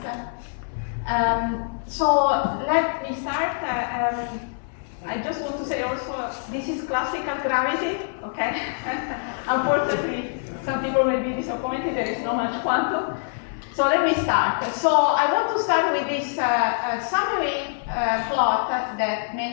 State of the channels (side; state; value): right; silent; 56 dB below the other